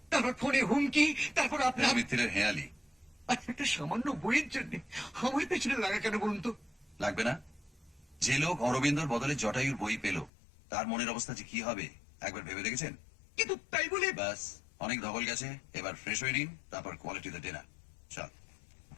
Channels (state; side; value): drops out; right; at 10.3 s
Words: তারপর ফোনে হুমকি, তারপর ফেলু আপনার। মিত্তিরের হেয়ালি। আচ্ছা, একটা সামান্য বইয়ের জন্য আমার পেছনে লাগা কেন বলুন তো? লাগবে না? যে লোক অরবিন্দর বদলে জটায়ুর বই পেল, তার মনের অবস্থা যে কি হবে একবার ভেবে দেখেছেন? কিন্তু তাই বলে ব্যাস, অনেক ধকল গেছে, এবার ফ্রেশ হয়ে নিন, তারপর কোয়ালিটিতে ডিনার। চল।